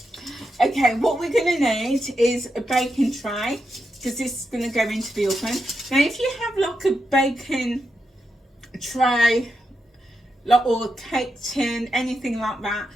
Okay, what we're going to need is a baking tray, because this is going to go into the oven. Now, if you have like a baking tray, like, or a cake tin, anything like that,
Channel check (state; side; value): normal; both; correlation 0.86